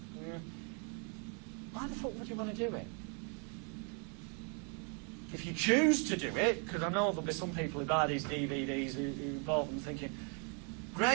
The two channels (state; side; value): quieter; left; 39.1 dB